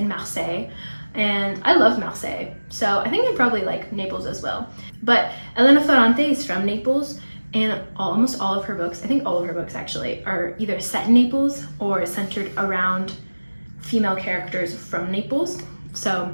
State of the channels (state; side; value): inverted; both; correlation -1.00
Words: Marseille. and I love Marseille, so I think I'd probably like Naples as well. But Elena Ferrante is from Naples, and almost all of her books, I think all of her books actually, are either set in Naples or centered around female characters from Naples. So